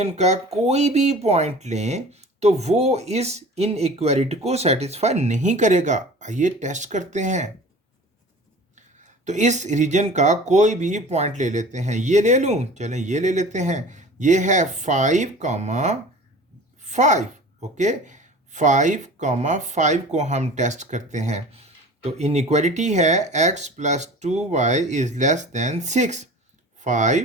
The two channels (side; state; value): both; normal; correlation 0.41